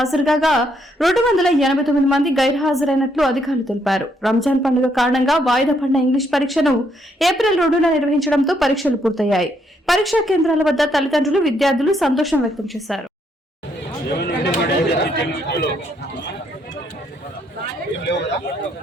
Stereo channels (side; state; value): both; normal; correlation 0.73